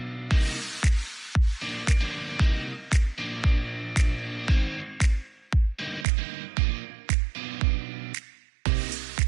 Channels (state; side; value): drops out; left; at 6.1 s